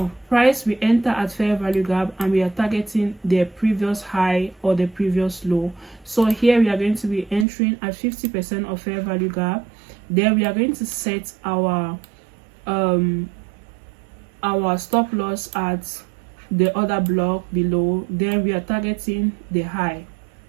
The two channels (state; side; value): drops out; left; at 7.5 s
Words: price, we enter at fair value gap and we are targeting the previous high or the previous low. So here we are going to be entering at 50% of fair value gap. Then we are going to set our stop loss at the other block below. Then we are targeting the high.